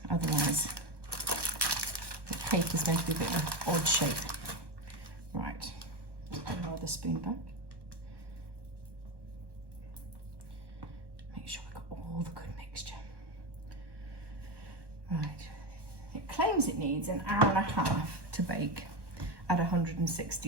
Otherwise, the paper is going to be a bit of an odd shape. Right, put another spoon back. Make sure I've got all the good mixture. Right, it claims it needs an hour and a half to bake at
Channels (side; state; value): left; late; 1.1 ms